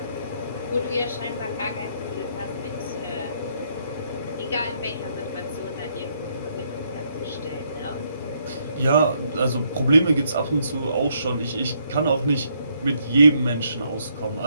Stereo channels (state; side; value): inverted; both; correlation -0.73